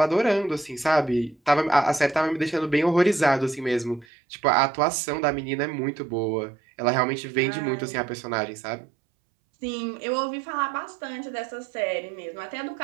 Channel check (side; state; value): left; drops out; at 4.0 s